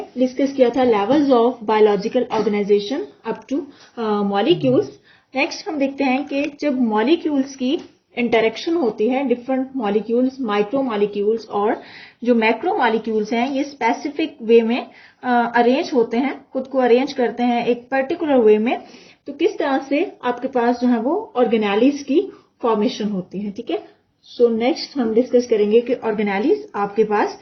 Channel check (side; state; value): both; identical; correlation 1.00